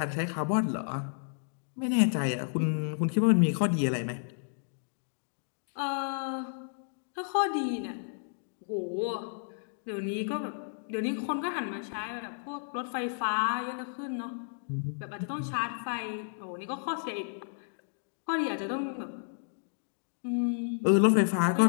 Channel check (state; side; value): silent; right; digital silence